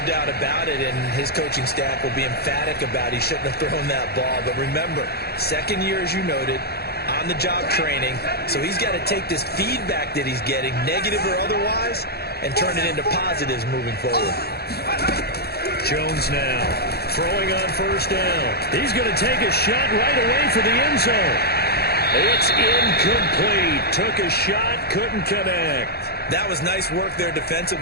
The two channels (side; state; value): right; late; 0.46 ms